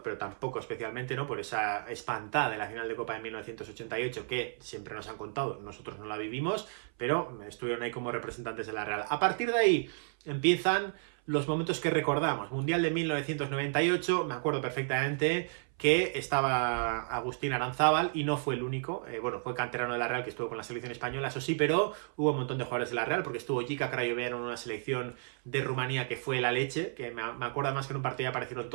pero tampoco especialmente, ¿no? Por esa espantada de la final de Copa de 1988 que siempre nos han contado, nosotros no la vivimos, pero estuvieron ahí como representantes de la Real. A partir de ahí empiezan los momentos que recordamos. Mundial de 1998, me acuerdo perfectamente que estaba Agustín Aranzábal y no fue el único, bueno, fue canterano de la Real que estuvo con la selección española, eso sí, pero hubo un montón de jugadores de la Real, porque estuvo Jica Crayoveanu en una selección de Rumanía que fue la leche, que me acuerdo más que en un partido aparecieron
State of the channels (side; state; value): left; silent; 56 dB below the other